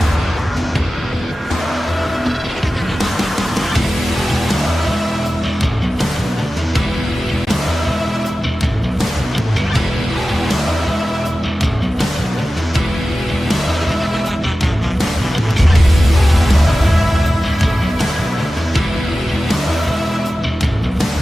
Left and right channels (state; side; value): normal; both; correlation 0.95